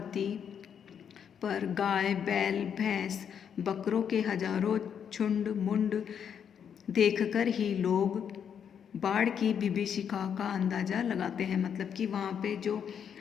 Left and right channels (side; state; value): right; quieter; 8.0 dB